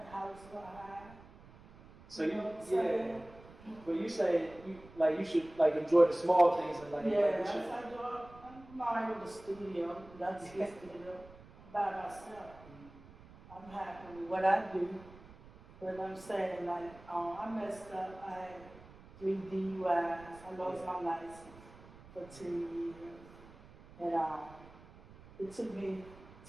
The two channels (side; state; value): right; noise; rumble, 20 dB below the sound